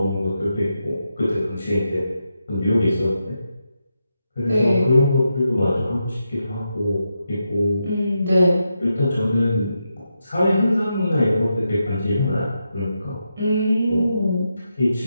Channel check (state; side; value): inverted; both; correlation -0.86